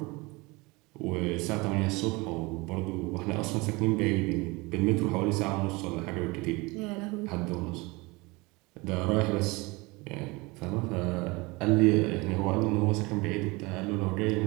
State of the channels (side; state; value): left; quieter; 24.6 dB